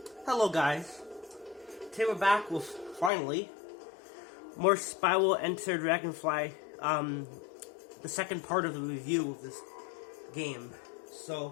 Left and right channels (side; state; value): right; drops out; at 3.1 s